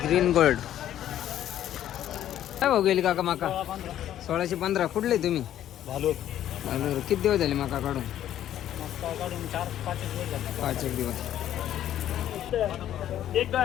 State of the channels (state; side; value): quieter; right; 11.7 dB